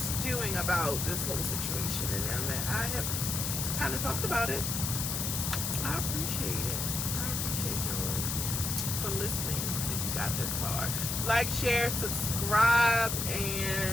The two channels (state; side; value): noise; left; hiss, 1 dB below the sound